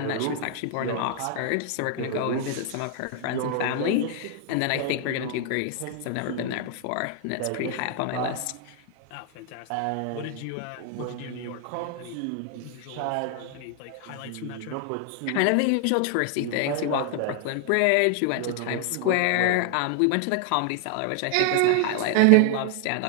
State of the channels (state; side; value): different; both; correlation 0.00